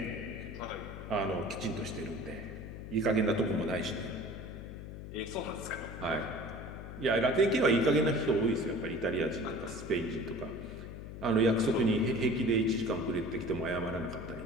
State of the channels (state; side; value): noise; left; hum, 10 dB below the sound